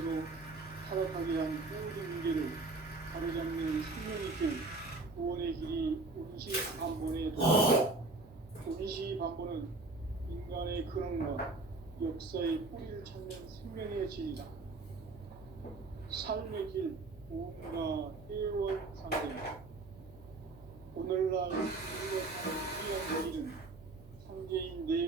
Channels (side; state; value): left; quieter; 3.4 dB